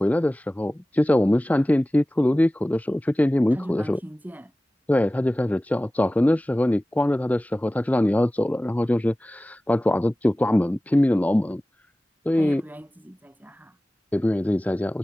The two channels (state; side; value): normal; both; correlation 0.97